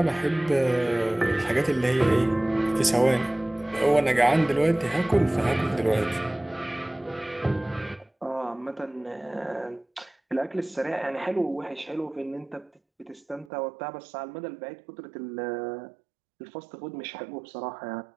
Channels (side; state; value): left; drops out; at 13.5 s